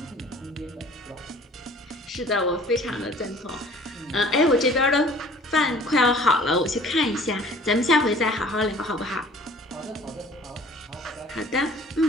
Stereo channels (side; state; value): both; normal; correlation 0.50